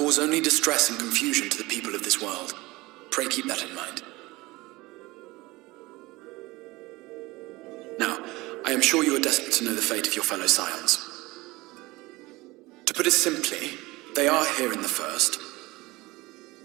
only distress and confusion to the people of this world. Pray keep that in mind. Now, I am sure you are desperate to know the fate of your fellow scions. To put it simply, they are here in the first.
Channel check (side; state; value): left; quieter; 21.2 dB